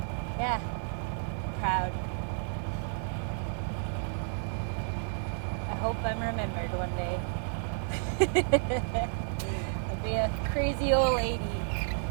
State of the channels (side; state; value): left; silent; 57 dB below the other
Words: Yeah, proud. I hope I'm remembered one day. I'll be a crazy old lady.